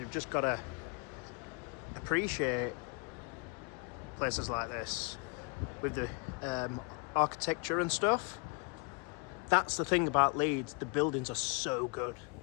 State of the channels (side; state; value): right; quieter; 33.2 dB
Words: just got to appreciate places like this with the architecture and stuff. That's the thing about Leeds, the buildings are so good.